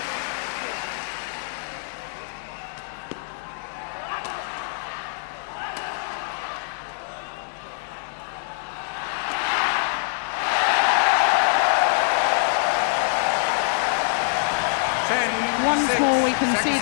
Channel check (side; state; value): right; silent; 58 dB below the other